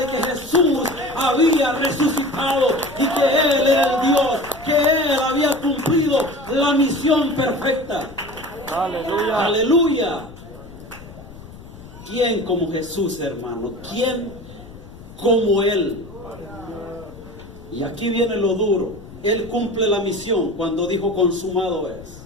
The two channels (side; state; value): left; noise; rumble, 18 dB below the sound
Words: que Jesús había resucitado y que Él era el Dios, que Él había cumplido la misión perfecta. Aleluya. Aleluya. ¿Quién como Jesús, hermano? ¿Quién como Él? Y aquí viene lo duro. Él cumple la misión cuando dijo consumado es.